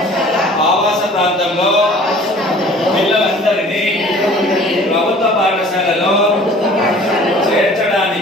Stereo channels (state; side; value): normal; both; correlation 0.48